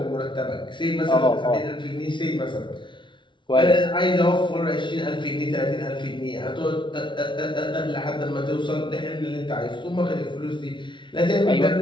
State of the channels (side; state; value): right; late; 0.24 ms